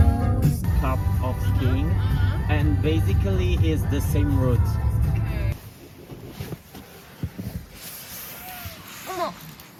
Cup of skiing, and basically is the same route.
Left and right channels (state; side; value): identical; both; correlation 1.00